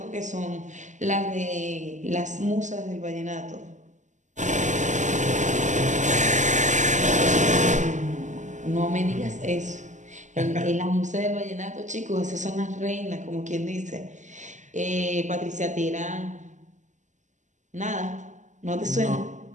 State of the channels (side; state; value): left; late; 0.35 ms